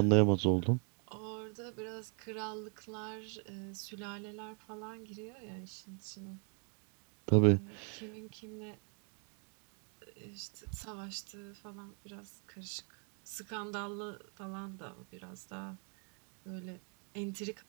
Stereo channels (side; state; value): left; quieter; 39.4 dB